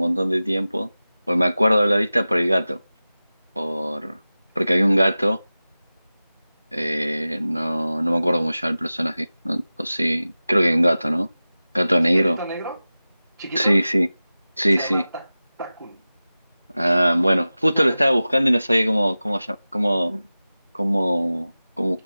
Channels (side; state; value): both; inverted; correlation -0.96